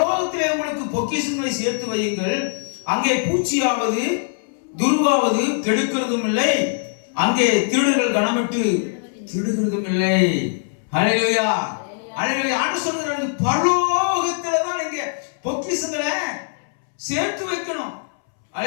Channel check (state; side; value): silent; right; 65 dB below the other